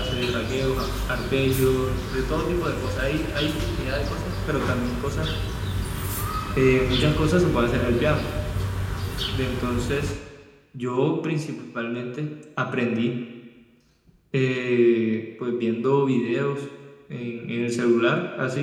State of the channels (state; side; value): identical; both; correlation 1.00